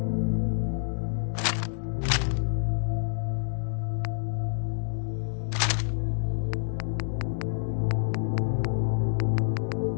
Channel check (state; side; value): silent; right; digital silence